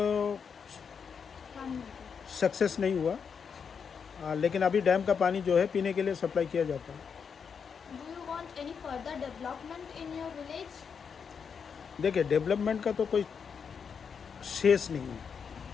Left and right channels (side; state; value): right; quieter; 6.5 dB